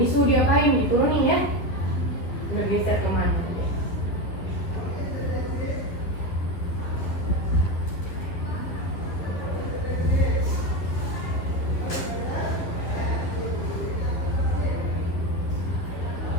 suhu diapain? Diturunin ya. Bergeser kemana?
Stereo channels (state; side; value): late; right; 11 ms